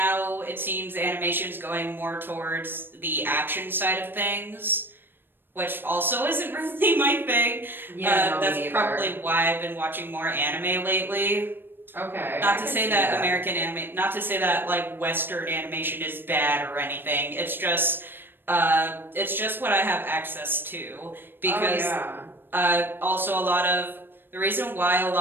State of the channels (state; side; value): late; left; 0.098 ms